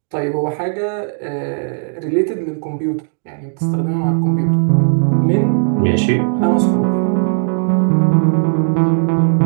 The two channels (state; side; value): silent; left; digital silence